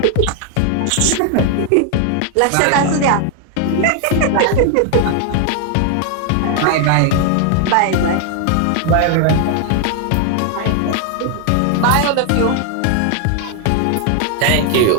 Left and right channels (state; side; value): different; both; correlation 0.00